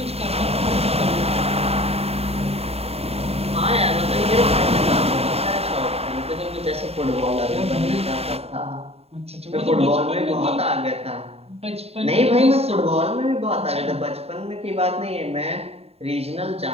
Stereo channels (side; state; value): left; late; 0.29 ms